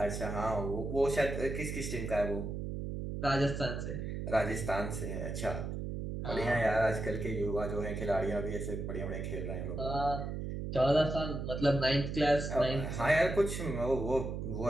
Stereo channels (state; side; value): noise; right; hum, 4 dB below the sound